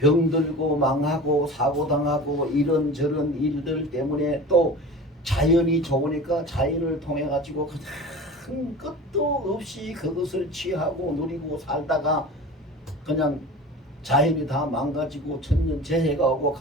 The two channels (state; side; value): normal; both; correlation 0.36